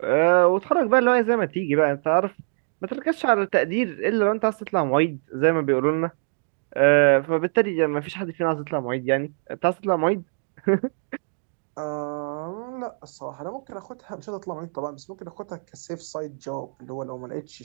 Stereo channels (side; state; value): left; silent; digital silence